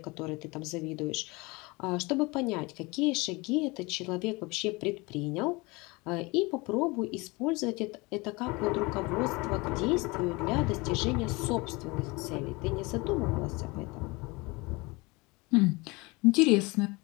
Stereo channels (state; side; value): quieter; right; 25.0 dB